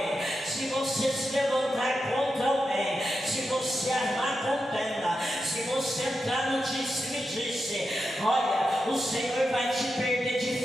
se você se levantar contra alguém, se você armar contenda, se você entrar no disse-me-disse, olha, o Senhor vai te perder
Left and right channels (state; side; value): normal; both; correlation 0.88